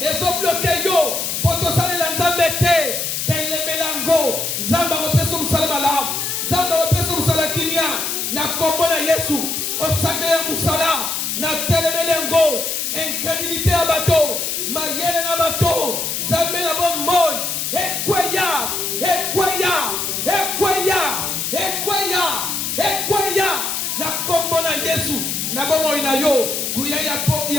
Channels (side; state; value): left; noise; hiss, 2 dB below the sound